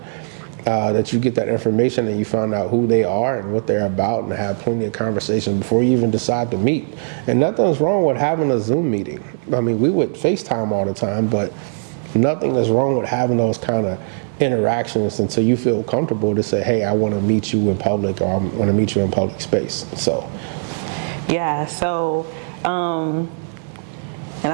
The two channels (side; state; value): left; silent; digital silence